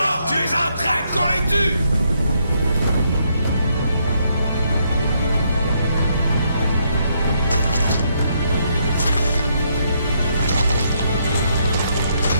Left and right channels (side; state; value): both; inverted; correlation -0.75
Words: Tu es un traître, qu'on les tue!